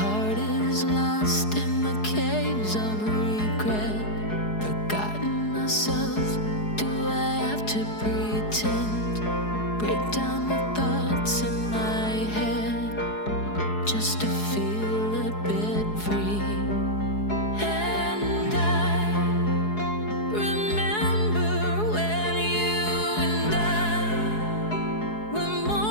is lost in the caves of regret. Forgotten myself, do I have to pretend? Break down the thoughts in my head just to feel a bit free. And I remember when you and I were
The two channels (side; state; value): right; late; 4.7 ms